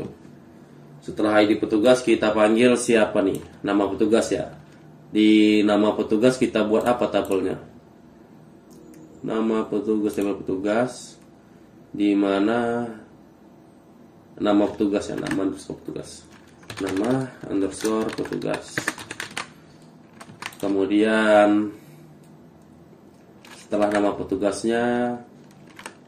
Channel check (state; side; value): identical; both; correlation 1.00